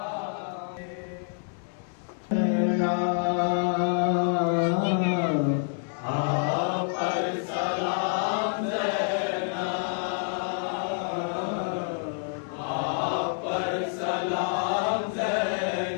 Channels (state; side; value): silent; right; 60 dB below the other